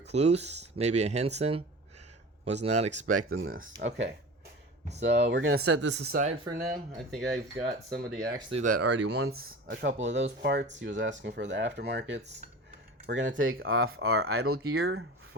maybe a Henson. Was not expecting this. Okay, so we're gonna set this aside for now. I think I've got somebody actually that already wants a couple of those parts. He was asking for the aftermarkets. We're gonna take off our idle gear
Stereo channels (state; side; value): normal; both; correlation 0.35